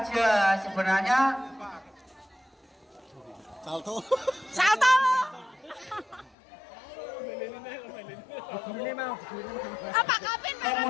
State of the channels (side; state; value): right; drops out; at 6.4 s